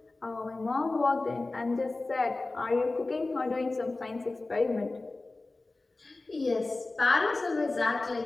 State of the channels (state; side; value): quieter; right; 3.2 dB